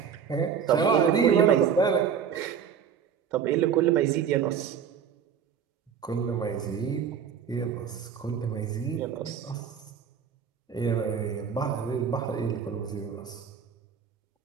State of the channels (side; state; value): left; quieter; 7.5 dB